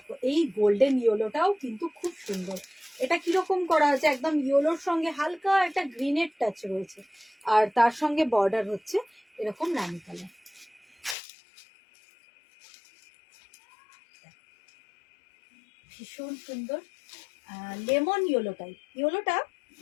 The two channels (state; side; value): drops out; right; at 11.2 s